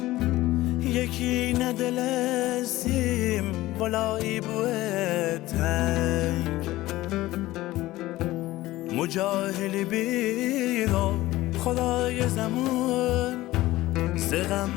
یکی ندل سیم ولایی بوه تنگ مجاهلی بیرا خدای زمان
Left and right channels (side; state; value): right; quieter; 17.1 dB